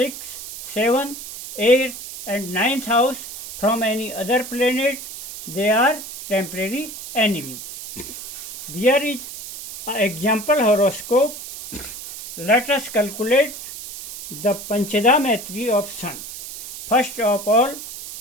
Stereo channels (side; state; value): right; noise; hiss, 11 dB below the sound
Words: seventh, eighth, and ninth house from any other planet, they are temporary enemy. There is an example horoscope. Let us calculate the Panchada Maitri of Sun. First of all,